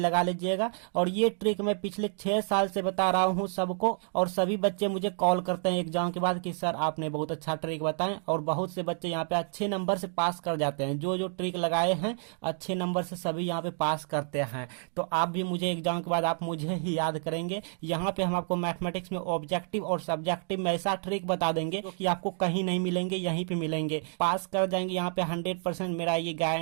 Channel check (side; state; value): left; silent; 57 dB below the other